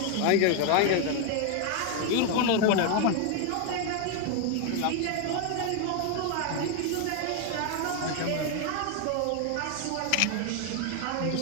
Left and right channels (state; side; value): different; both; correlation 0.01